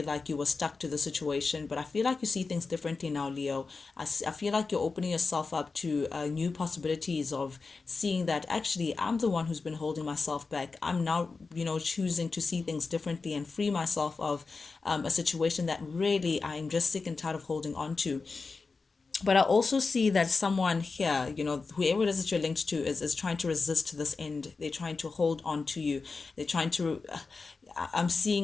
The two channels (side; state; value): right; quieter; 4.3 dB